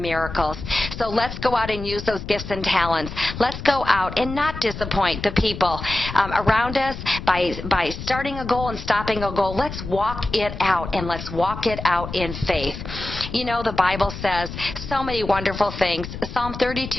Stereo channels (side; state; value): left; noise; rumble, 9 dB below the sound